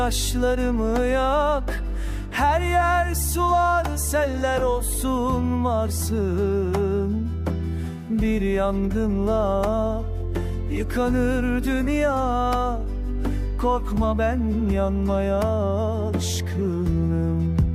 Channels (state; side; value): identical; both; correlation 1.00